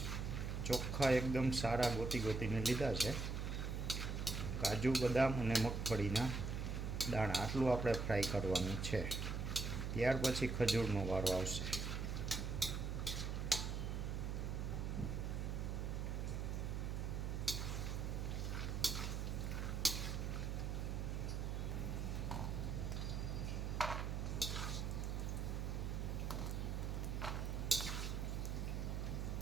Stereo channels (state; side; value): noise; right; hum, 1 dB below the sound